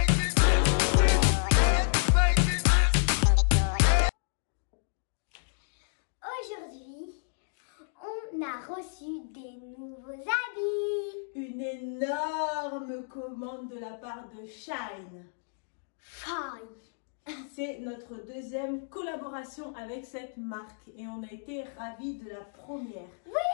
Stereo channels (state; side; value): silent; right; digital silence